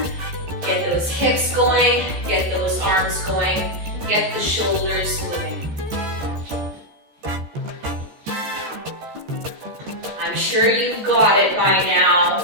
get those hips going, get those arms going, get the shoulders moving. I'm sure you've got it by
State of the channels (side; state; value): left; late; 14 ms